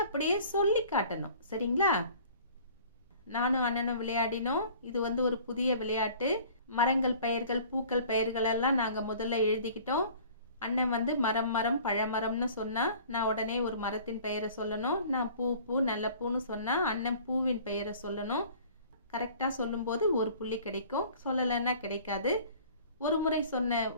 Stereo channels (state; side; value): inverted; both; correlation -0.49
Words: அப்படியே சொல்லி காட்டணும். சரிங்களா? நானும் அண்ணனும் விளையாடினோம். இது ஒரு புதிய விளையாட்டு. மரங்கள் பெயர்கள், பூக்கள் பெயர்கள் எல்லாம் நாங்க முதல்ல எழுதிக்கிட்டோம். அண்ணன் மரம் மரம் பழமரம்னு சொன்னா நான் உடனே ஒரு மரத்தின் பெயரை சொல்லணும். நான் பூ பூ நல்ல பூன்னு சொன்னா அண்ணன் பூவின் பெயரை சொல்லணும். கரெக்டா சொல்லும்போது ஒரு புள்ளி கிடைக்கும், சொல்லலைன்னா கிடைக்காது. ஒரு முறை சொன்ன